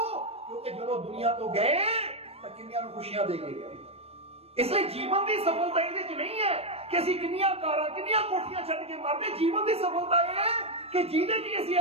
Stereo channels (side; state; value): left; late; 0.29 ms